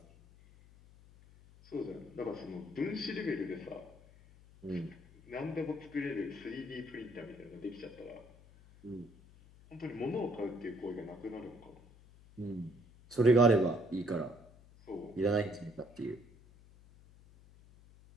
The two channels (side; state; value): left; noise; hum, 23 dB below the sound